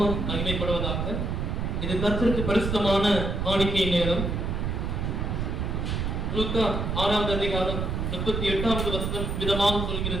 மகிமைப்படுவதாக. இது கர்த்தருக்கு பரிசுத்தமான காணிக்கை நேரம். லூக்கா 6ஆம் அதிகாரம் 38வது வசனம் விதமாக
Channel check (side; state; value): right; noise; rumble, 1 dB below the sound